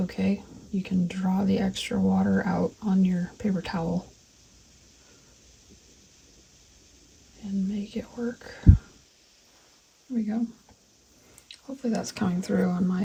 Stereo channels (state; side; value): identical; both; correlation 1.00